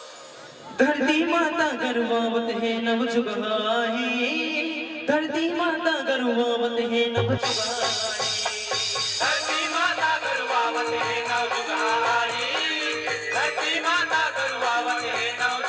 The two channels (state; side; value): identical; both; correlation 1.00